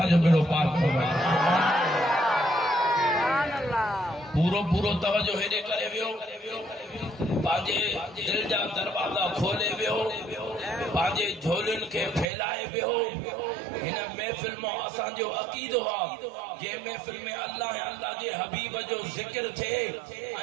बेड़ो पार थो वञे। पूरो तवजो हेॾे करे वियो, पंहिंजे दिल जा दरवाजा खोले वियो, पंहिंजे झोलियुनि खे फैलाए वियो। हिन महफ़िल में असांजो अक़ीदो आहे जे महफ़िल में अल्लाह जे हबीब जो ज़िक्र थिए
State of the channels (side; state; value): left; drops out; at 12.2 s